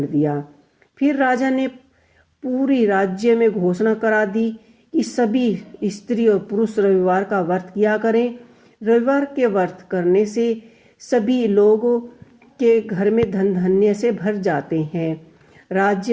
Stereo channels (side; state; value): both; identical; correlation 1.00